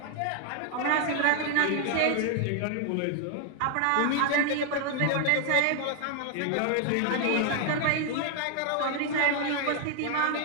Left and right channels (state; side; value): different; both; correlation 0.00